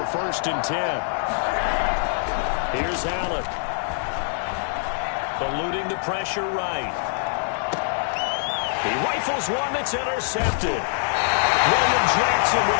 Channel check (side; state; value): right; silent; digital silence